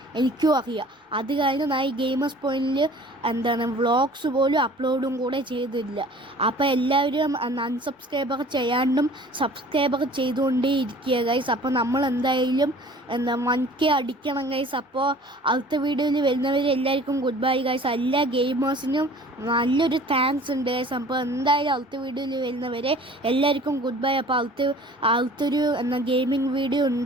എനിക്കും അറിയാം. അത് കാരണം ഞാൻ ഈ ഗെയിമേഴ്സ് പോയിന്റിൽ വ്ളോഗ്സ് പോലും അപ്ലോഡും കൂടെ ചെയ്തില്ല. അപ്പോൾ എല്ലാവരും അൺസബ്സ്ക്രൈബർ ചെയ്യാണ്ടും സബ്സ്ക്രൈബർ ചെയ്തുകൊണ്ടേ ഇരിക്കുക ഗൈസ്. അപ്പോൾ നമ്മൾ എന്തായാലും 1K അടിക്കണം ഗൈസ്. അപ്പോൾ അടുത്ത വീഡിയോയിൽ വരുന്നവർ എല്ലാവർക്കും ഗുഡ് ബൈ ഗൈസ്. എല്ലാ ഗെയിമേഴ്സിനും നല്ലൊരു താങ്ക്സ് ഉണ്ട് ഗൈസ്. അപ്പോൾ എന്തായാലും അടുത്ത വീഡിയോയിൽ വരുന്നവരെ എല്ലാവർക്കും ഗുഡ് ബൈ. അപ്പോൾ അടുത്തൊരു ഗെയിമിംഗ് വീഡിയോ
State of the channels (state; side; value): normal; both; correlation 0.48